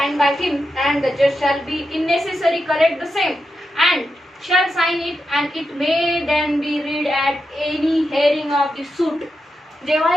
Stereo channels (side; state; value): both; normal; correlation 0.87